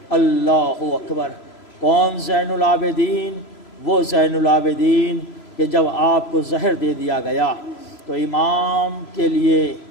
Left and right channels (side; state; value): right; late; 3.0 ms